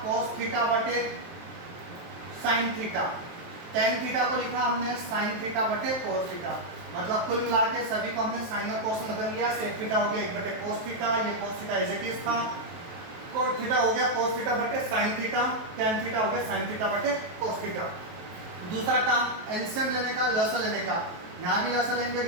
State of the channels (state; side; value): late; left; 23 ms